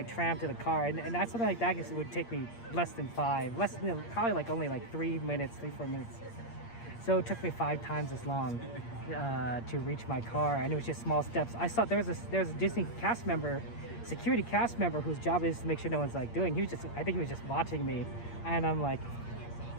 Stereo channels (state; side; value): late; right; 8.6 ms